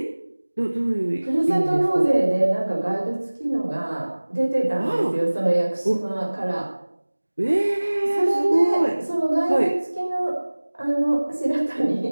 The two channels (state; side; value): inverted; both; correlation -1.00